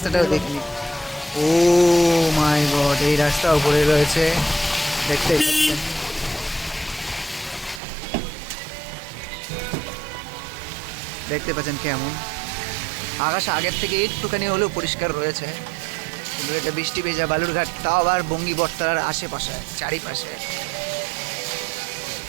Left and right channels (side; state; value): left; drops out; at 7.8 s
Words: দেখিনি। ও মাই গড, এই রাস্তা উপরে রয়েছে, দেখতে পাচ্ছেন। দেখতে পাচ্ছেন কেমন আকাশ আগের থেকে একটুখানি হলেও পরিষ্কার রয়েছে, কিন্তু এটা বৃষ্টি ভেজা বালুরঘাট, তাও আবার বঙ্গী বটতলার আশেপাশে চারিপাশে।